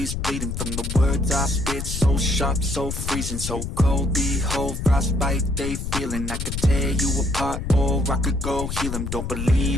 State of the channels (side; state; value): left; noise; rumble, 4 dB below the sound